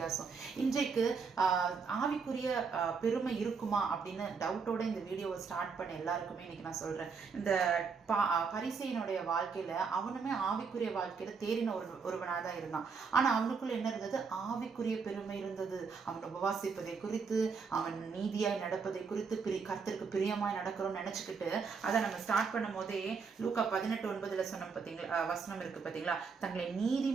இன்றைக்கு ஆவிக்குரிய பெருமை இருக்குமா அப்படின்னு டவுட்டோட இந்த வீடியோவை ஸ்டார்ட் பண்ண எல்லாருக்குமே இன்னைக்கு நான் சொல்றேன், இந்த பரிசேயனுடைய வாழ்க்கையில அவனுமே ஆவிக்குரிய வாழ்க்கையில தேறின ஒருவனாதான் இருந்தான். ஆனா அவனுக்குள்ள என்ன இருந்தது? ஆவிக்குரிய பெருமை இருந்தது. அவன் உபவாசிப்பதை குறித்து, அவன் நீதியாய் நடப்பதை குறித்து, கர்த்தருக்கு பிரியமாய் நடக்கிறோம்னு நினைச்சுக்கிட்டு அதை நம்ம ஸ்டார்ட் பண்ணும் போதே லூக்கா 18:9 சொன்ன பாத்தீங்களா வசனம் இருக்கு பாத்தீங்களா? தங்களை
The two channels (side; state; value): left; quieter; 5.4 dB